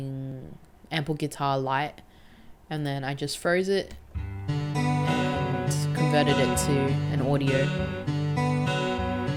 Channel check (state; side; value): identical; both; correlation 1.00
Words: Ample Guitar Lite, and then I just froze it and converted it to an audio.